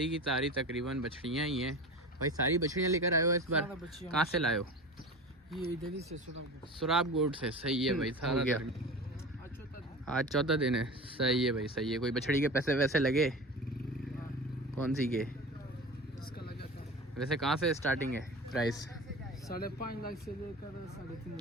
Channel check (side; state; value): both; normal; correlation 0.32